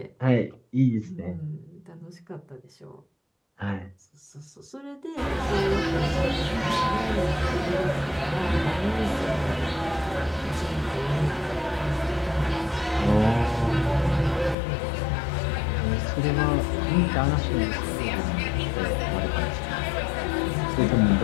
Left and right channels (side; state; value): right; drops out; at 14.6 s